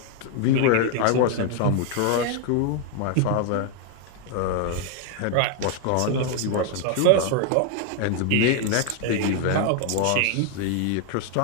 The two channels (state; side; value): different; both; correlation 0.00